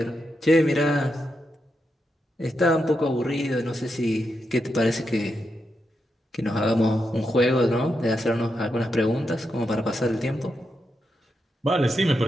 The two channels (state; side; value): normal; both; correlation 0.85